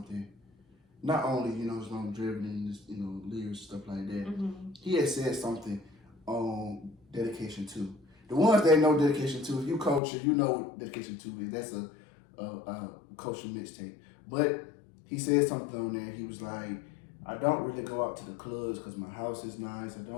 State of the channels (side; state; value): right; drops out; at 10.0 s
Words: Not only his longevity and just lyrics stuff like that. He had said something on dedication too. The ones that know dedication too, if you culture, you know what dedication too is. That's a culture mixtape. But he said something on there. He was like, I don't really go out to the clubs because my house is nice. I